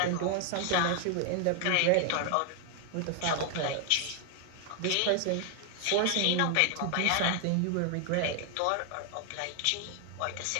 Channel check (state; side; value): different; both; correlation 0.00